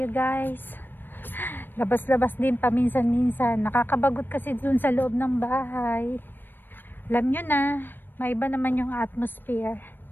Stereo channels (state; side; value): late; right; 0.094 ms